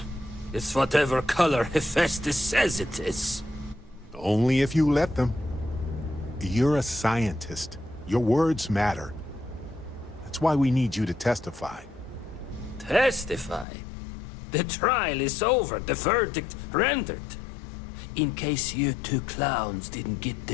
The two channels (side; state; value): right; drops out; at 13.7 s